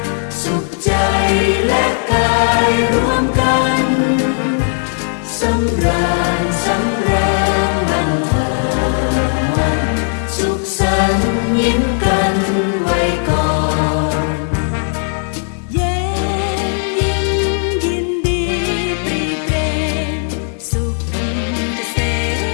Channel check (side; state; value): right; silent; 57 dB below the other